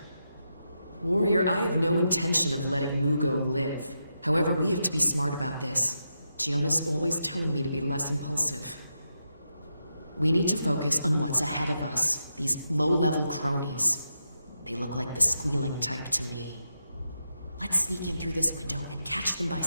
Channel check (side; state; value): both; inverted; correlation -0.85